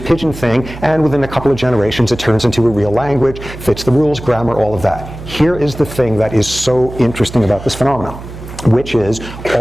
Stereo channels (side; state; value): right; noise; hum, 13 dB below the sound